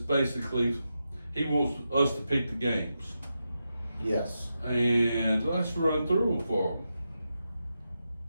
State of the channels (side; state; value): both; inverted; correlation -0.88